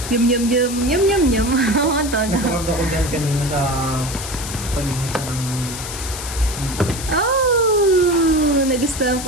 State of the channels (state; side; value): noise; left; hiss, 9 dB below the sound